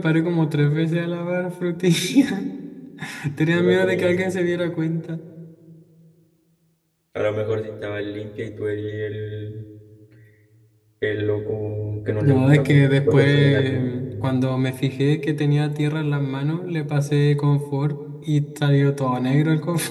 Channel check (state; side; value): identical; both; correlation 1.00